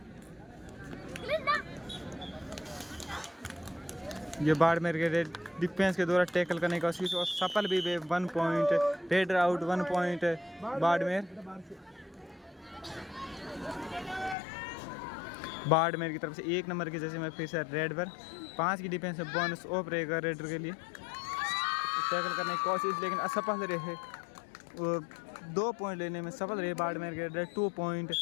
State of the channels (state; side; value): drops out; right; at 14.4 s